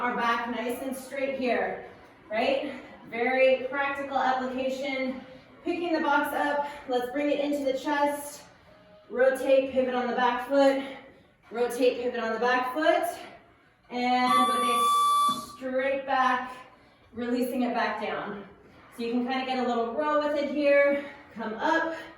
back nice and straight here, right? Very practical application. Picking the box up, let's bring it into the chest. Rotate, pivot on the back foot. Rotate, pivot on the back foot. And with a straight back, releasing it back down. So you can kind of get a little row with it here. Come up,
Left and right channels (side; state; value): both; identical; correlation 1.00